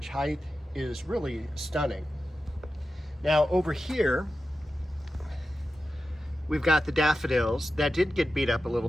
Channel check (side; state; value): both; normal; correlation 0.92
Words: height is really stunning. Now over here, we've got the daffodils that did get beat up a little